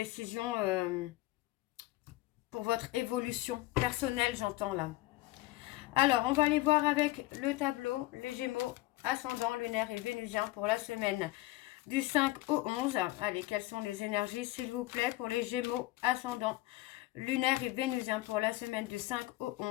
pour votre évolution personnelle, j'entends, là. Alors, on va aller voir avec le tableau, les Gémeaux, ascendant, lunaire et vénusien pour la semaine du 5 au 11. Allez, quelles sont les énergies, s'il vous plaît, pour les Gémeaux, ascendant, lunaire et vénusien pour la semaine du 5 au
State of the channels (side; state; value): right; quieter; 18.3 dB